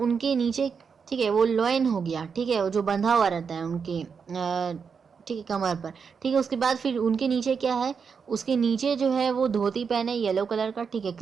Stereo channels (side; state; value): left; quieter; 6.0 dB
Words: नीचे, ठीक है, वो लॉइन हो गया, ठीक है, वो जो बंधा हुआ रहता है उनके ठीक है कमर पर, ठीक है। उसके बाद फिर उनके नीचे क्या है, उसके नीचे जो है वो धोती पहने येलो कलर का, ठीक है,